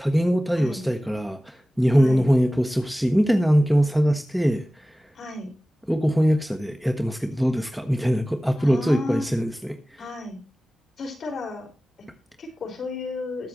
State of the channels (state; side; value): normal; both; correlation 0.97